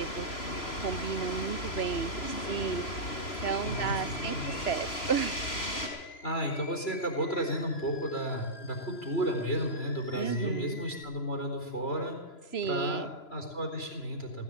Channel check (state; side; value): late; right; 3.0 ms